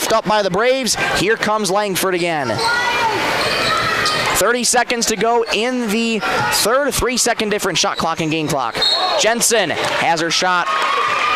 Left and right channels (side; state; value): both; identical; correlation 1.00